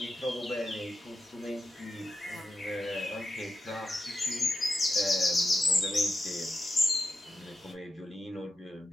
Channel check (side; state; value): both; normal; correlation 0.87